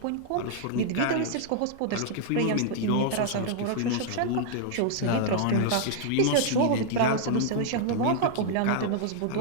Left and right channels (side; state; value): both; different; correlation -0.01